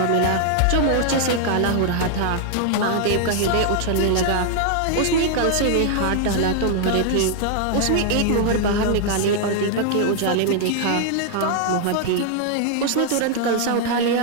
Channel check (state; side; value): different; both; correlation 0.00